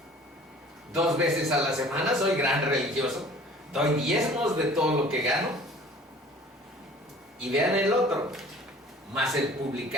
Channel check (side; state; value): both; normal; correlation 0.48